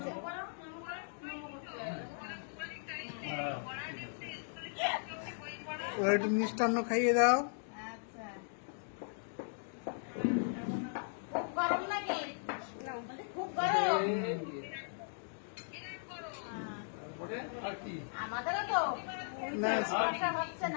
একটু মিষ্টান্ন খাইয়ে দাও। আচ্ছা, খুব গরম নাকি? খুব গরম। আমাদেরও তো না, সমস্যা হচ্ছে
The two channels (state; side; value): silent; right; digital silence